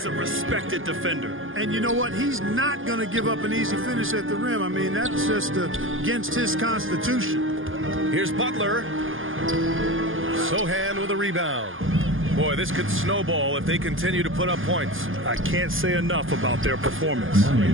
a respected defender. And you know what? He's not going to give up an easy finish at the rim. I mean, that's just against his constitution. Here's Butler. Sohan with a rebound. Boy, this could snowball if they continue to put up points. I can't say enough about their performance.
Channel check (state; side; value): late; left; 0.59 ms